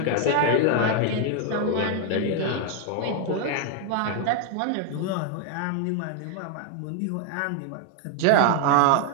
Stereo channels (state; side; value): different; both; correlation 0.00